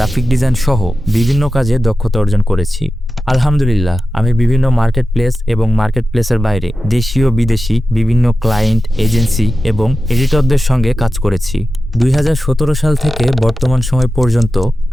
ডিজাইন সহ বিভিন্ন কাজে দক্ষতা অর্জন করেছি। আলহামদুলিল্লাহ, আমি বিভিন্ন মার্কেট প্লেস এবং মার্কেট প্লেসের বাইরে দেশীয় বিদেশি বিভিন্ন ক্লায়েন্ট, এজেন্সি এবং এডিটরদের সঙ্গে কাজ করেছি। 2017 সাল থেকে বর্তমান সময় পর্যন্ত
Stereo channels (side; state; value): both; normal; correlation 0.93